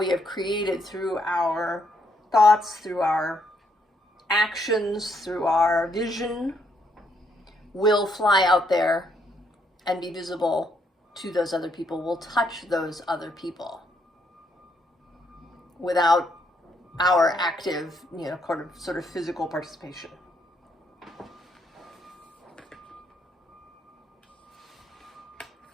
have created through our thoughts, through our actions, through our vision, will fly out there and be visible to those other people, will touch those other people without our active, you know, sort of physical participation.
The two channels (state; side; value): normal; both; correlation 0.73